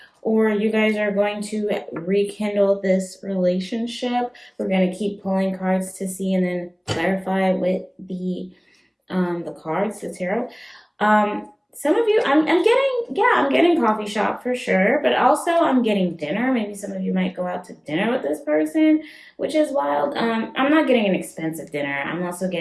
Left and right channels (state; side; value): identical; both; correlation 1.00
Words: or you guys are going to rekindle this relationship, we're going to keep pulling cards to see and then clarify with the cards, the tarot. Some of you, I'm getting coffee shop for sure, but also I'm getting dinner. Maybe some of you might go out to dinner with this person, which is wild. I'm not getting an expensive dinner. I'm also